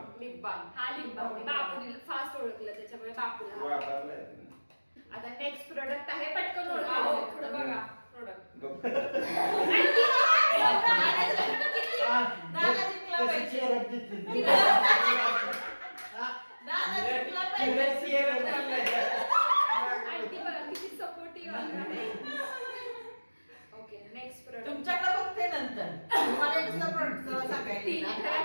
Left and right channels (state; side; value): inverted; both; correlation -1.00